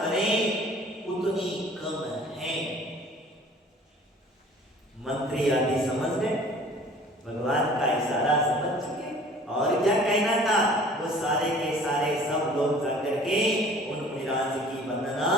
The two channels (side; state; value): both; normal; correlation 0.49